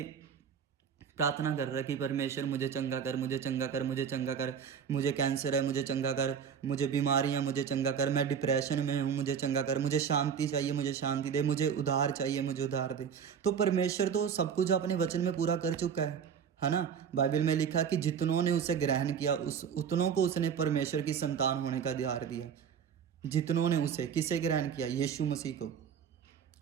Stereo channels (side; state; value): left; quieter; 7.5 dB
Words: प्रार्थना कर रहा है कि परमेश्वर मुझे चंगा कर, मुझे चंगा कर, मुझे चंगा कर, मुझे कैंसर है मुझे चंगा कर, मुझे बीमारियां मुझे चंगा कर, मैं डिप्रेशन में हूँ मुझे चंगा कर, मुझे शांति चाहिए मुझे शांति दे, मुझे उधार चाहिए मुझे उधार दे। तो परमेश्वर तो सब कुछ अपने वचन में पूरा कर चुका है ना। बाइबल में लिखा कि जितनों ने उसे ग्रहण किया उतनों को उसने परमेश्वर की संतान होने का अधिकार दिया। जितनों ने उसे, किसे ग्रहण किया? यीशु मसीह को।